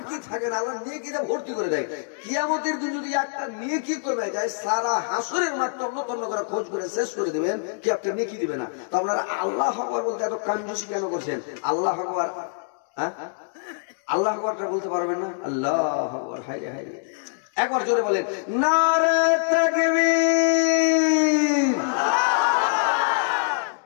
থাকে না, আল্লাহ নেকিতে ভর্তি করে দেয়। কিয়ামতের দিন যদি একটা নেকি কমে যায়, সারা হাসরের মাঠ তন্ন তন্ন করে খোঁজ করে শেষ করে দিবেন, কি একটা নেকি দিবে না। তো আপনারা আল্লাহ আকবার বলতে এত কাঞ্জুসি কেন করছেন? আল্লাহ আকবার, হ্যাঁ আল্লাহ আকবারটা বলতে পারবেন না? আল্লাহ আকবার, হায় রে হায় রে, একবার জোরে বলেন নারায়ে তাকবীর।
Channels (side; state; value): right; silent; digital silence